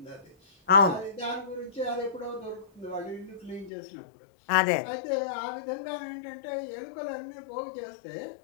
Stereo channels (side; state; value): right; drops out; at 3.7 s